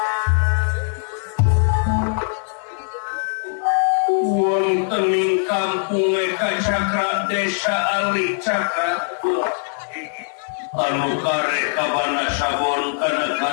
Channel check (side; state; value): right; silent; 65 dB below the other